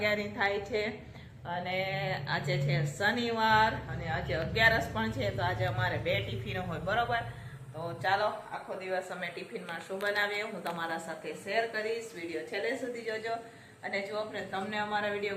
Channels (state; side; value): identical; both; correlation 1.00